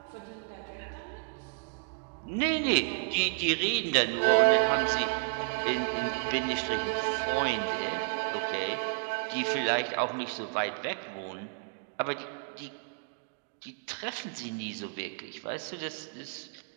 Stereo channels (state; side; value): quieter; left; 39.4 dB